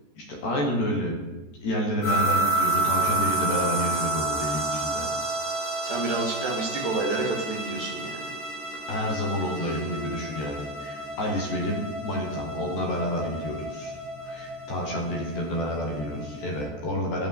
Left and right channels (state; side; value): late; right; 14 ms